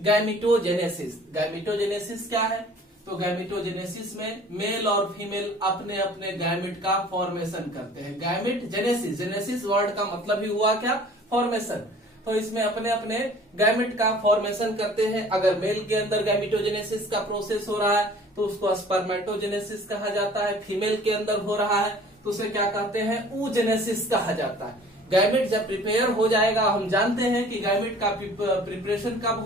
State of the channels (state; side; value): normal; both; correlation 0.49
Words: गैमिटोजेनेसिस क्या है, तो गैमिटोजेनेसिस में मेल और फीमेल अपने अपने गैमिट का फॉर्मेशन करते हैं। गैमिट जेनेसिस, जेनेसिस वर्ड का मतलब ही हुआ क्या, फॉर्मेशन। तो इसमें अपने अपने गैमिट का फॉर्मेशन करते हैं। अगर मेल के अंदर गैमिटोजेनेसिस का प्रोसेस हो रहा है तो उसको स्पर्मेटोजेनेसिस कहा जाता है। फीमेल के अंदर हो रहा है तो उसे क्या कहते हैं, oogenesis कहा जाता है। गैमिट जब प्रिपेयर हो जाएगा, हम जानते हैं कि गैमिट का प्रिपरेशन कब